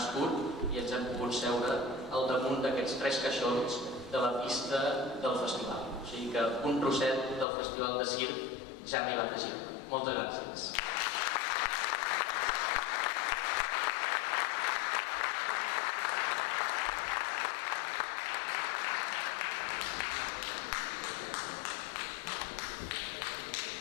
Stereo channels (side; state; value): right; drops out; at 7.5 s